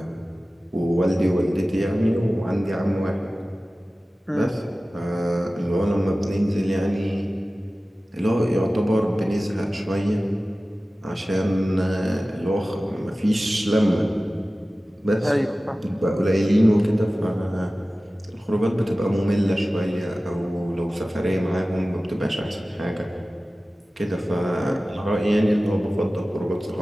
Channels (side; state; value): both; normal; correlation 0.96